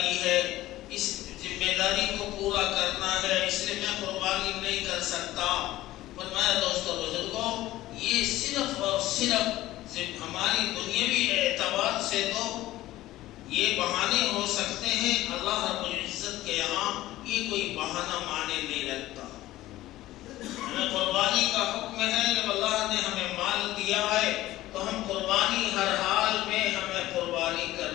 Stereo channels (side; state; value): right; quieter; 15.9 dB